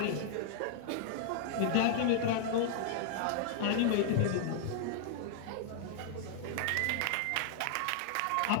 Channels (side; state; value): both; different; correlation 0.00